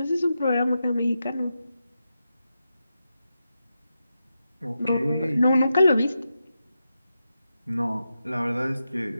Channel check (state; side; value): inverted; both; correlation -0.88